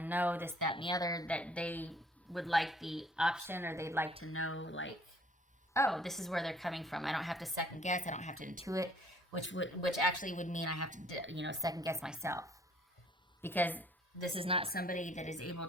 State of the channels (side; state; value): both; normal; correlation 0.58